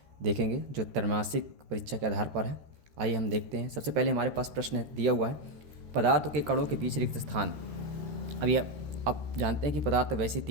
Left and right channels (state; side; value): late; left; 13 ms